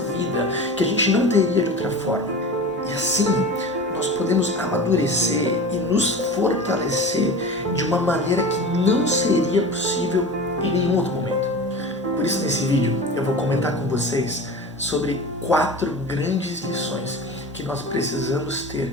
vida, que a gente não teria de outra forma. E assim, nós podemos amadurecer e nos fortalecer de uma maneira que não seria possível em nenhum outro momento. Por isso, nesse vídeo, eu vou comentar com vocês sobre 4 grandes lições que nós precisamos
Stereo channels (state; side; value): normal; both; correlation 0.33